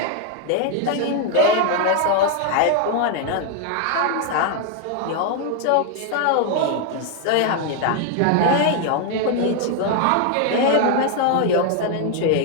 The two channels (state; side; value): different; both; correlation 0.00